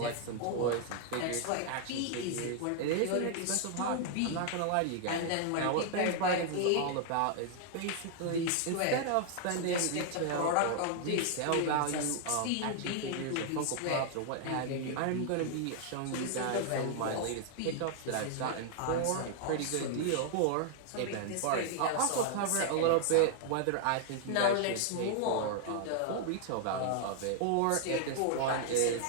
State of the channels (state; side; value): different; both; correlation 0.00